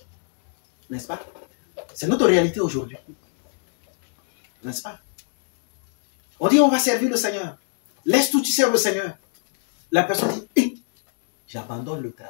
N'est-ce pas? C'est notre réalité aujourd'hui. N'est-ce pas? On dit on va servir le Seigneur. Laisse tout, tu sers le Seigneur. La personne dit, j'abandonne le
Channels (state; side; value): silent; right; digital silence